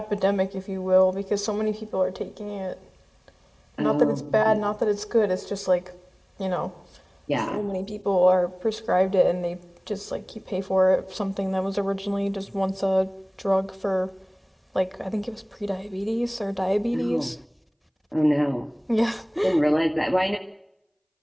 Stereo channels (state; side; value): identical; both; correlation 1.00